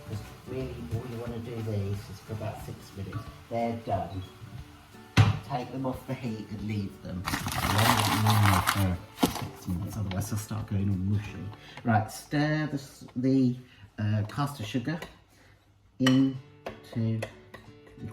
Because really all you want to do these is for about 6 minutes. They're done. Take them off the heat and leave them. For 6 minutes, otherwise they'll start going all mushy. Right, stir the caster sugar into the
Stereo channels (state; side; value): identical; both; correlation 1.00